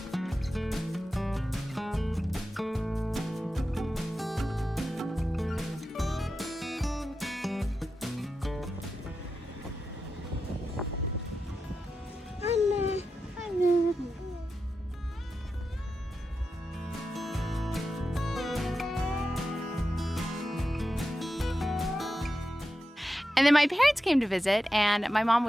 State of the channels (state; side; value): normal; both; correlation 0.90